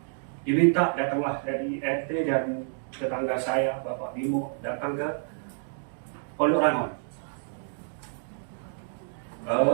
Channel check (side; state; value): left; silent; digital silence